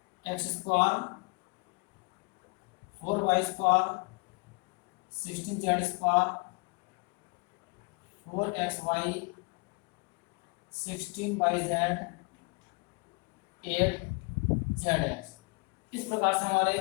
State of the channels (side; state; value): right; quieter; 30.5 dB